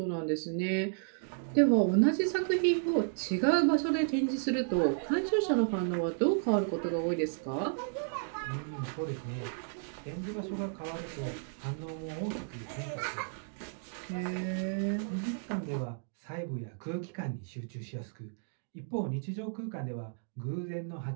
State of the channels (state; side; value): silent; left; digital silence